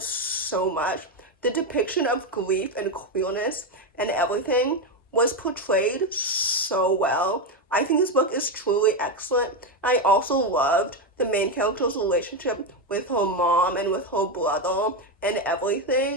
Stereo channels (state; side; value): normal; both; correlation 0.09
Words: so much. The depiction of grief and queerness and everything was portrayed so well. I think this book is truly excellent. I also loved the main character's relationship with her mom and with her brother and